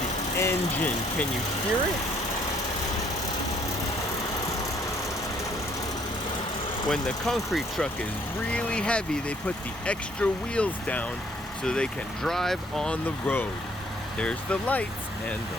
engine. Can you hear it? When the concrete truck is really heavy, they put the extra wheels down so they can drive on the road. There's the lights and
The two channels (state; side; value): normal; both; correlation 0.64